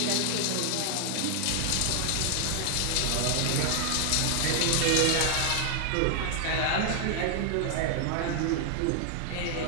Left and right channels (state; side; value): different; both; correlation 0.00